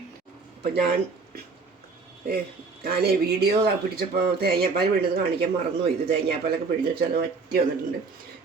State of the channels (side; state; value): left; quieter; 4.3 dB